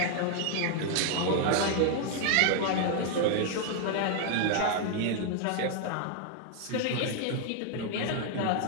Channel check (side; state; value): both; different; correlation 0.00